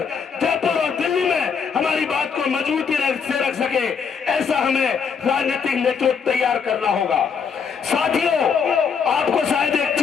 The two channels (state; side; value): quieter; right; 6.2 dB